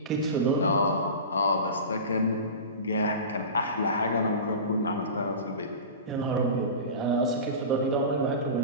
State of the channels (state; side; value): inverted; both; correlation -0.30